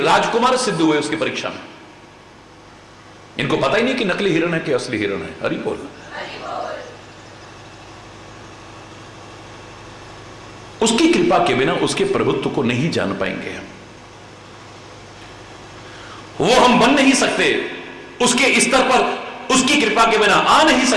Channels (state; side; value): identical; both; correlation 1.00